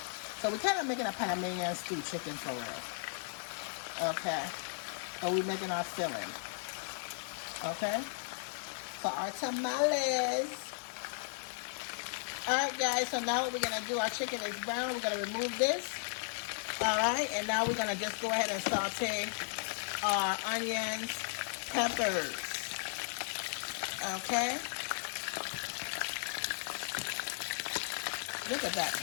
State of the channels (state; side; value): silent; right; digital silence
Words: So we're kind of making a Panamanian stewed chicken for real. Okay. So we're making our filling. Okay. For our tamales. Alright guys, so now what we're going to do, our chicken is brown. We're going to remove this. Alright, and now we're going to just go ahead and saute our onions, peppers. Okay. Look at that